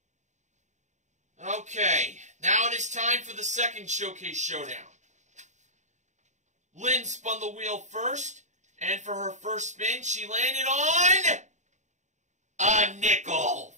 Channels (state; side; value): late; left; 0.34 ms